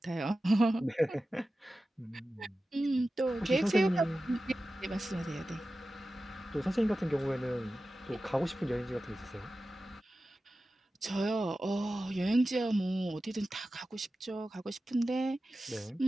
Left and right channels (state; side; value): normal; both; correlation 0.94